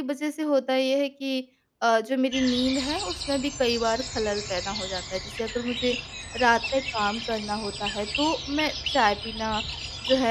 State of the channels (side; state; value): both; identical; correlation 1.00